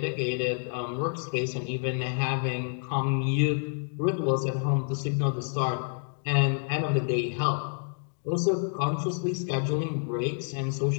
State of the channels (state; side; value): silent; right; digital silence